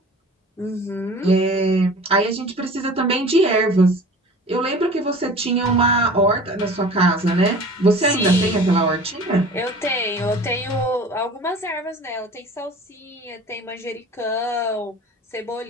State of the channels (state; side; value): normal; both; correlation 0.42